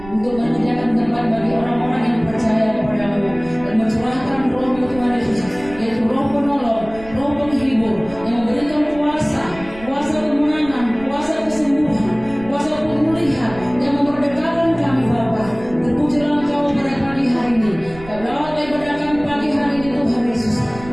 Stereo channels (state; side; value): noise; right; rumble, 18 dB below the sound